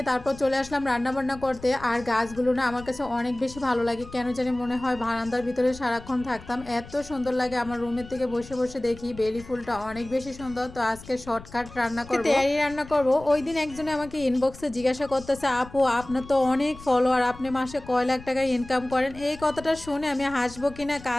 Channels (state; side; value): noise; left; rumble, 17 dB below the sound